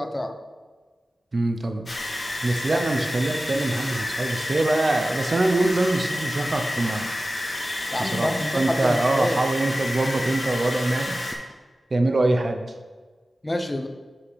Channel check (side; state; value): both; normal; correlation 0.95